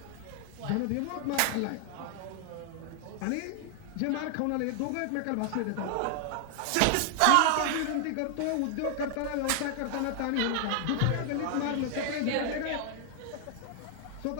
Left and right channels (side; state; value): both; different; correlation 0.00